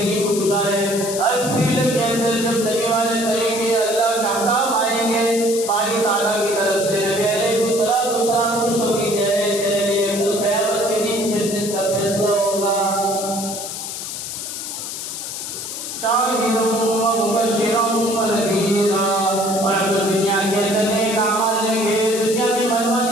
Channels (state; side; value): noise; left; hiss, 7 dB below the sound